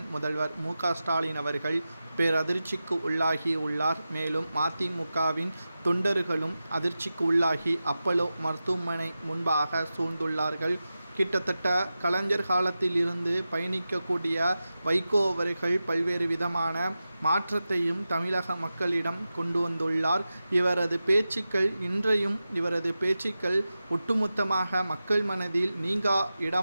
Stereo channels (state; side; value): inverted; both; correlation -0.93